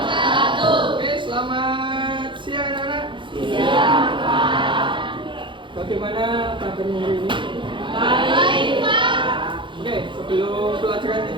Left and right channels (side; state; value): left; late; 0.24 ms